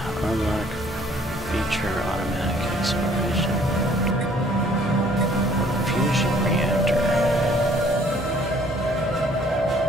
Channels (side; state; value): both; normal; correlation 0.59